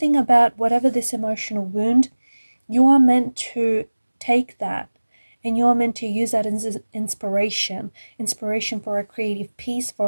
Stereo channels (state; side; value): inverted; both; correlation -1.00